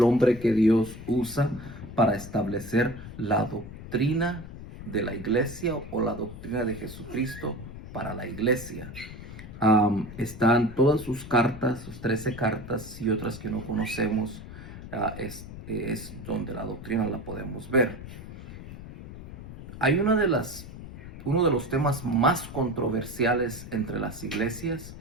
hombre que Dios usa para establecer la doctrina de la iglesia o la doctrina de Jesucristo para la iglesia. Están todas sus cartas, sus 13 cartas y otras que no conocemos, es donde la doctrina la podemos ver. Hay uno de los temas más controversiales entre las iglesias,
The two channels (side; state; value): left; noise; rumble, 12 dB below the sound